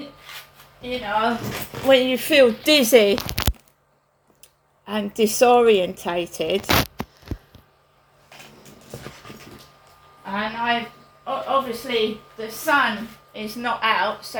You know, when you feel dizzy and disorientated, and obviously the sun is not out, so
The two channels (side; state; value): both; identical; correlation 1.00